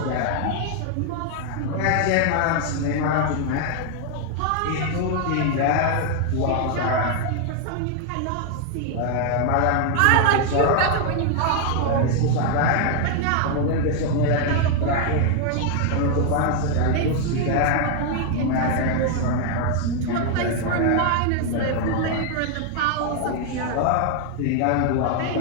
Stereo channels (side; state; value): both; different; correlation 0.00